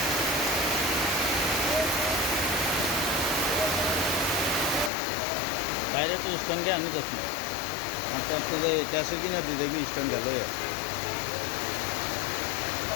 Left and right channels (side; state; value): right; drops out; at 4.9 s